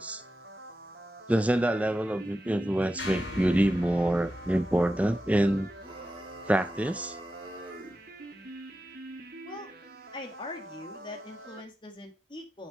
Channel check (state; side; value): normal; both; correlation 0.90